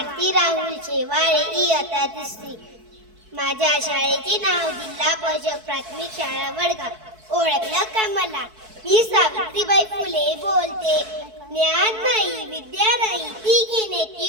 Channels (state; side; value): late; left; 4.6 ms